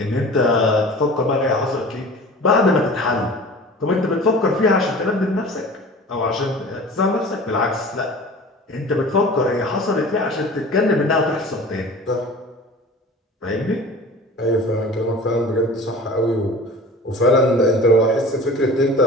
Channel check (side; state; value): both; normal; correlation 0.40